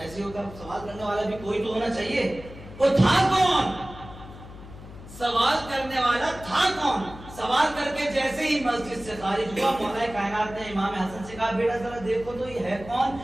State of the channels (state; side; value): noise; left; hum, 16 dB below the sound